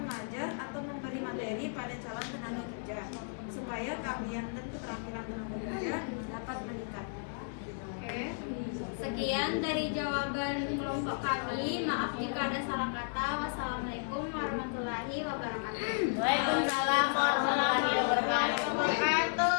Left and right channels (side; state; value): right; silent; digital silence